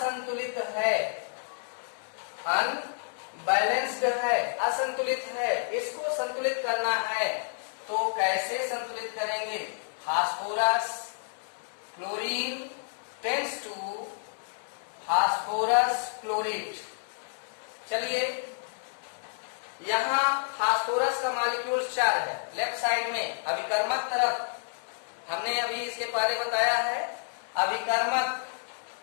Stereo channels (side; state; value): right; silent; 58 dB below the other